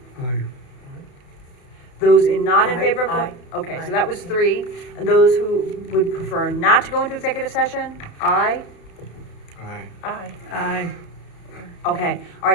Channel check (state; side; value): late; right; 32 ms